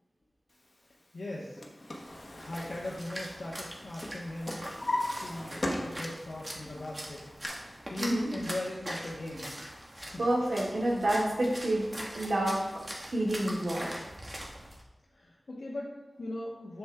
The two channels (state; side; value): normal; both; correlation 0.96